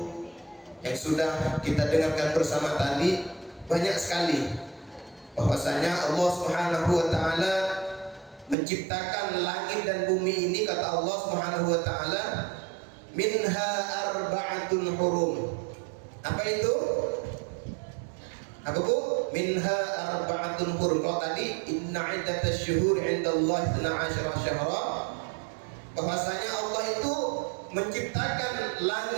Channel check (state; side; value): drops out; left; at 8.6 s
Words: yang sudah kita dengarkan bersama tadi. Banyak sekali bahwasanya Allah Subhanahu wa ta'ala menciptakan langit dan bumi ini, kata Allah Subhanahu wa ta'ala, minha arba'atun hurum. Apa itu? Apa Bu? Minha arba'atun hurum. Kalau tadi inna iddatasy syuhur 'indallahi 12 syahra, bahwasanya Allah itu menciptakan